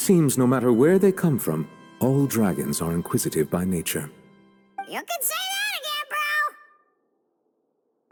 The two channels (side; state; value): both; identical; correlation 1.00